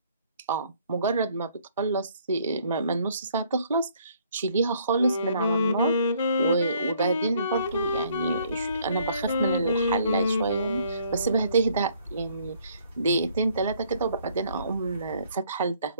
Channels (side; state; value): both; inverted; correlation -0.63